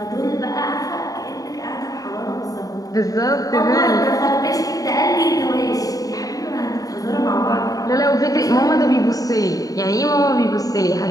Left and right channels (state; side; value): late; right; 0.18 ms